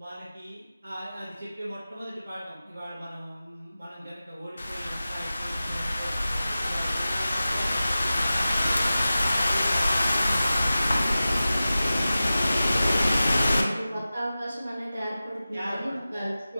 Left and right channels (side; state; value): both; inverted; correlation -0.95